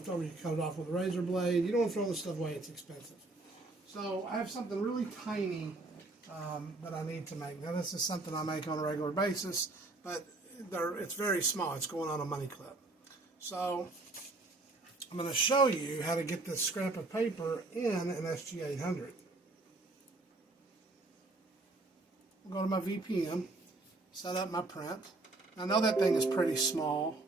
over, you cut it off with a razor blade. You don't want to throw this stuff away, it's expensive. So I have something really tiny that I need to make. Now this is something I make on a regular basis, but it's very small. It's going on a money clip. So I'm going to show you how to get this scrap of paper in an SG-800. I'll go to my VPM, set up my print. I know that thing is pretty small.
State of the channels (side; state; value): left; quieter; 3.1 dB